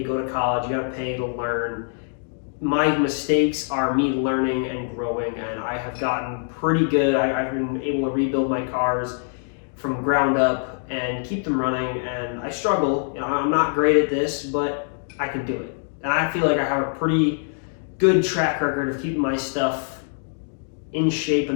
go to college, you got to pay to learn. My mistakes are me learning and growing, and I have gotten pretty good. I've been able to rebuild my cars from ground up and keep them running, and I struggle. I'm not great at this, but I can do it. And I feel like I have a pretty good track record of keeping my stuff in shape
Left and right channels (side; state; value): right; silent; 63 dB below the other